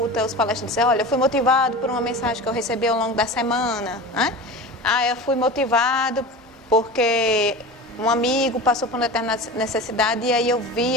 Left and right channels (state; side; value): normal; both; correlation 0.31